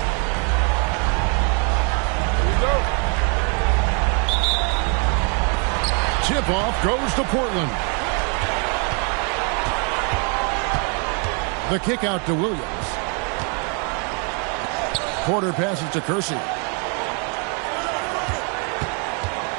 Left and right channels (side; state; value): left; quieter; 36.9 dB